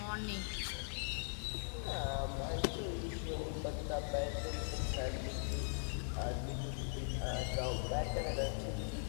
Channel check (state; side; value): silent; right; digital silence